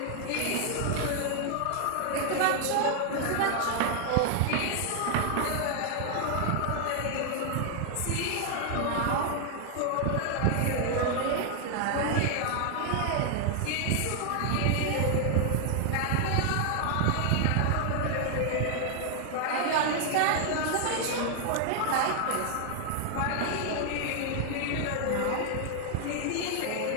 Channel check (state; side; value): different; both; correlation 0.00